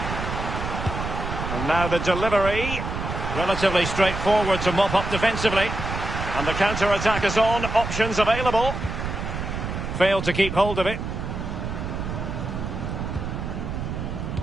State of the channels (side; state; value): right; noise; rumble, 5 dB below the sound